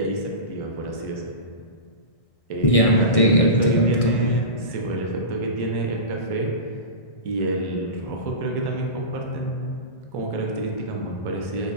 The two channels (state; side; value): late; right; 1.6 ms